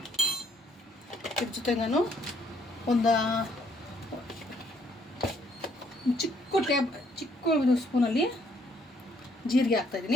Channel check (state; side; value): normal; both; correlation 0.67